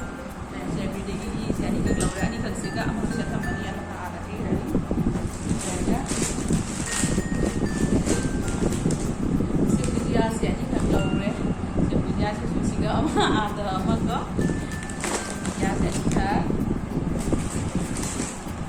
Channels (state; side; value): identical; both; correlation 1.00